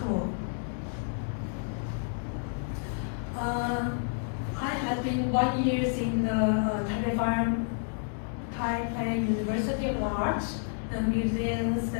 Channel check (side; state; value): right; silent; digital silence